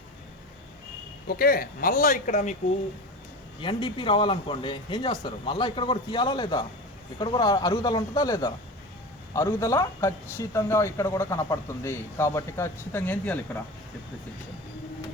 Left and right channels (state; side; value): normal; both; correlation 0.30